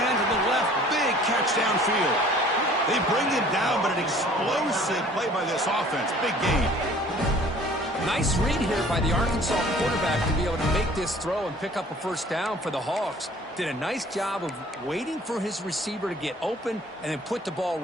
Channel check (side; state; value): both; normal; correlation 0.52